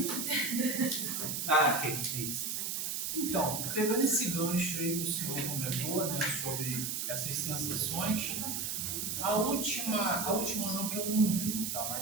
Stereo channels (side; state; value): right; noise; hiss, 2 dB below the sound